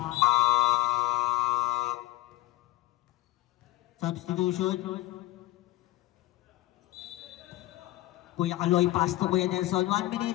Substitution. Kuya Kaloy, pass to Kuya Nelson. 1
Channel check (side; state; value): right; quieter; 16.7 dB